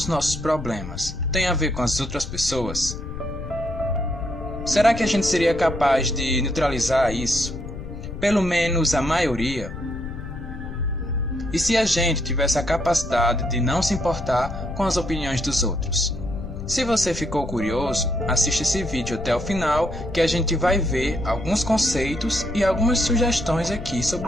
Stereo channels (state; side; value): noise; left; rumble, 9 dB below the sound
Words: nossos problemas tem a ver com as outras pessoas? Será que a gente seria capaz de neutralizar isso? Pelo menos a maioria? E se a gente tivesse a capacidade de não se importar com as opiniões dos outros? Se você ficou curioso, assista esse vídeo até o final que a gente vai ver alguns conceitos e algumas sugestões aqui